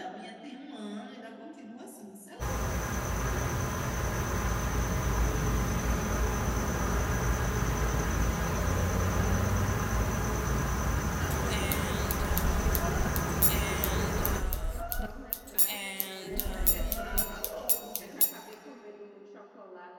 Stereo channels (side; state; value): both; identical; correlation 1.00